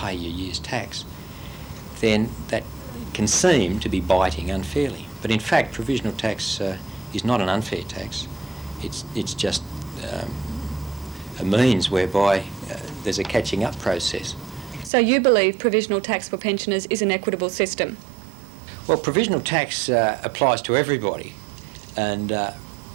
your year's tax, then that can seem to be biting unfairly. But in fact, provisional tax is not an unfair tax. It's just a means whereby there's a catching up process. So you believe provisional tax for pensioners is an equitable system? Well, provisional tax applies to everybody, and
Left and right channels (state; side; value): drops out; left; at 14.9 s